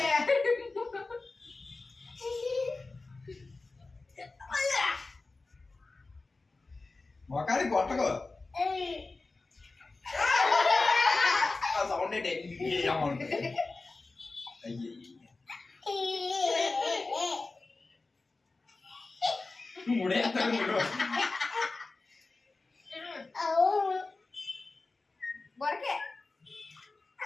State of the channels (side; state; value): right; quieter; 3.6 dB